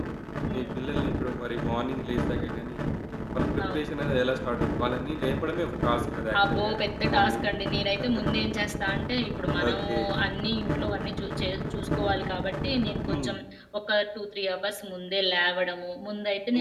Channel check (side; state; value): both; identical; correlation 1.00